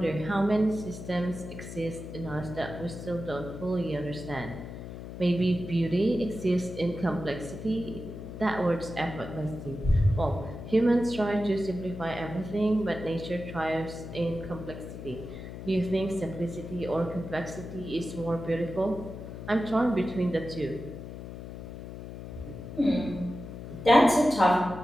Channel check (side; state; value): left; noise; hum, 10 dB below the sound